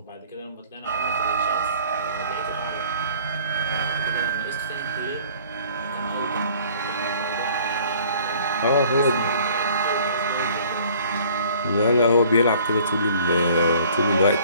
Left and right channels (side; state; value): both; inverted; correlation -0.53